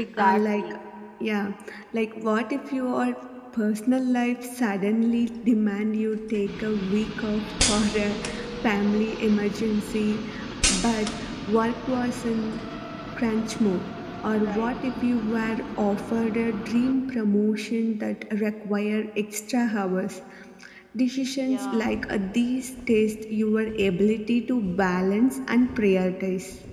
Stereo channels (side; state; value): both; identical; correlation 1.00